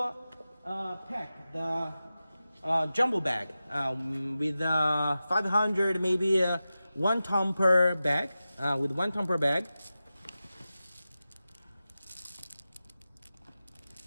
pack the jumbo bag with 500, maybe 1 ton per bag, with 1 ton per bag,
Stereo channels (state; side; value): inverted; both; correlation -0.94